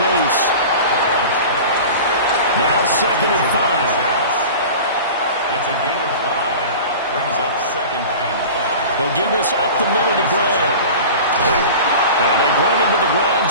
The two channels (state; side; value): inverted; both; correlation -0.36